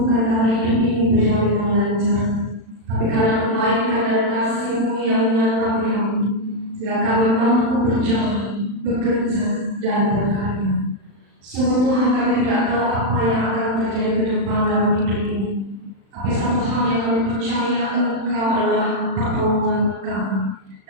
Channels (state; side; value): late; left; 36 ms